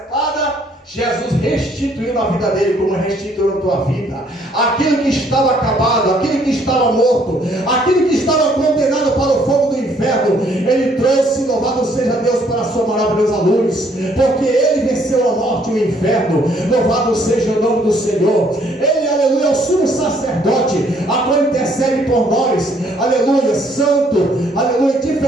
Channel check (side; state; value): both; normal; correlation 0.65